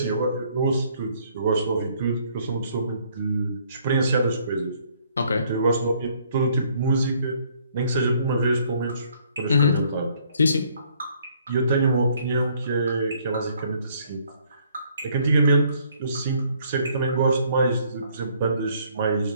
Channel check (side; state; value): both; inverted; correlation -0.64